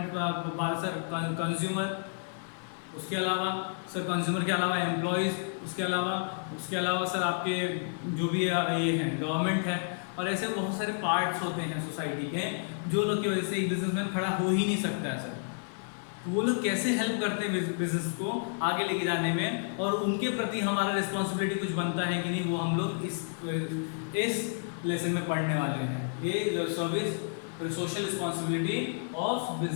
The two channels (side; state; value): right; silent; digital silence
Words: बात सर, कंज्यूमर, उसके अलावा सर कंज्यूमर के अलावा एम्प्लॉयज़, उसके अलावा सर आपके जो भी ये हैं गवर्नमेंट है, और ऐसे बहुत सारे पार्ट्स होते हैं सोसाइटी के जो लोग की वजह से एक बिजनेसमैन खड़ा हो ही नहीं सकता है सर। तो वो लोग कैसे हेल्प करते हैं बिजनेस को आगे लेके जाने में, और उनके प्रति हमारा रिस्पॉन्सिबिलिटी कुछ बनता है कि नहीं, वो हम लोग इस लेसन में पढ़ने वाले हैं। ये service social responsibility of